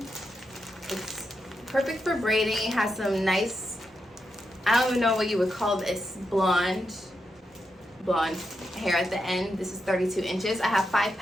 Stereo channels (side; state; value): both; normal; correlation 0.85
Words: It's perfect for braiding. It has some nice, I don't even know what you would call this, blonde hair at the end. This is 32 inches. I have 5